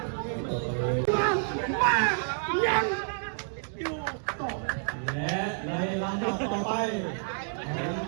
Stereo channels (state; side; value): silent; left; 58 dB below the other